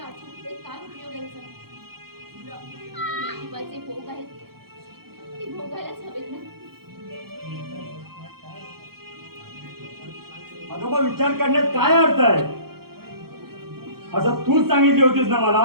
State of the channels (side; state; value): left; late; 0.94 ms